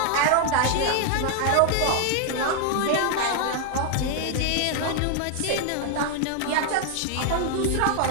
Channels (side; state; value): both; different; correlation 0.00